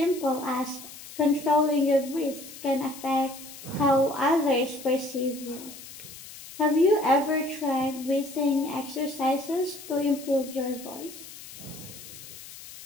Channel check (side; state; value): left; noise; hiss, 15 dB below the sound